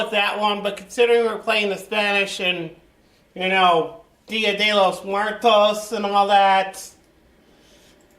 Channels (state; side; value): identical; both; correlation 1.00